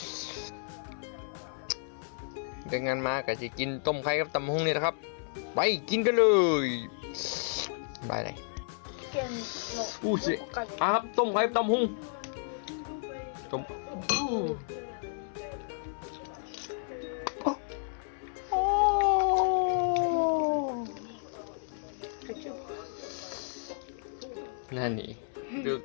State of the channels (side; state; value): right; silent; 56 dB below the other